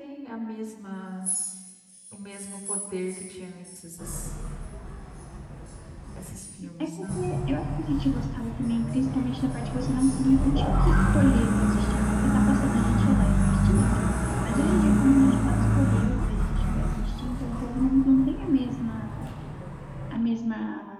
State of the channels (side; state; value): both; identical; correlation 1.00